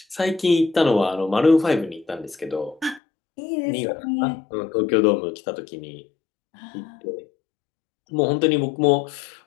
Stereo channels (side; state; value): right; drops out; at 3.0 s